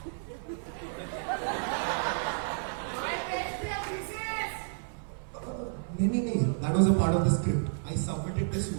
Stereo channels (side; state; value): left; silent; 55 dB below the other